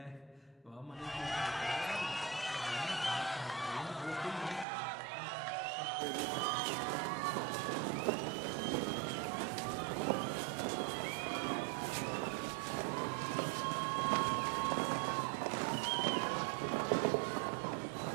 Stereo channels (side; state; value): left; drops out; at 4.7 s